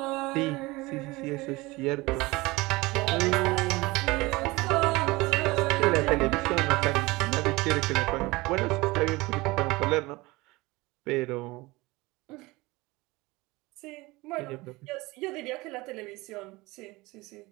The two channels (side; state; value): left; quieter; 21.9 dB